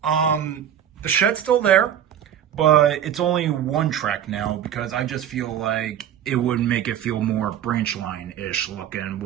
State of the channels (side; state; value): left; quieter; 10.0 dB